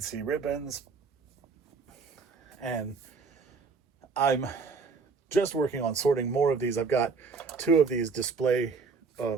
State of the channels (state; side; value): quieter; left; 4.8 dB